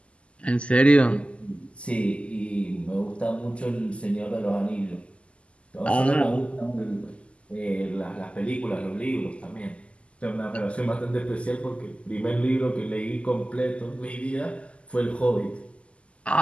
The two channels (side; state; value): right; late; 0.056 ms